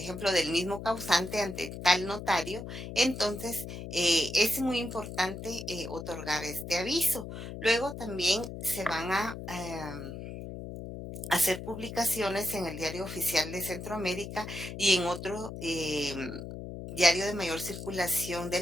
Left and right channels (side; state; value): left; noise; hum, 9 dB below the sound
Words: del mismo causante ante tal notario, entonces es muy importante otorgar este aviso. Luego también se van a hacer publicaciones en el Diario Oficial de Centroamérica y en otro diario de mayor circulación